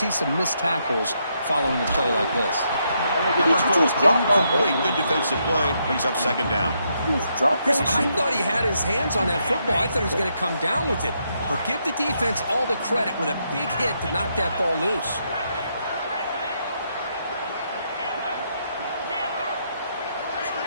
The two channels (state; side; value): inverted; both; correlation -0.78